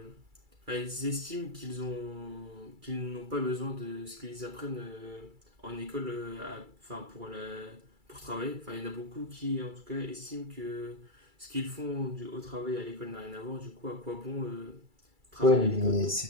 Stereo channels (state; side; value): late; left; 2.3 ms